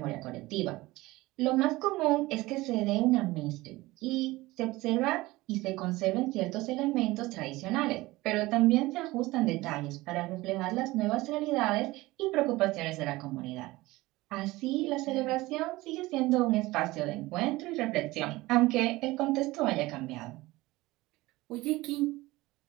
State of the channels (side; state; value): left; quieter; 19.7 dB